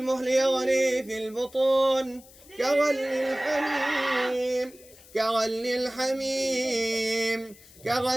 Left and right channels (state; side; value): noise; left; hiss, 23 dB below the sound